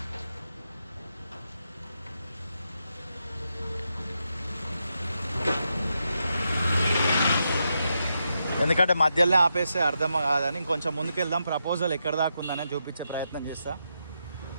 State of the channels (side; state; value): both; inverted; correlation -0.84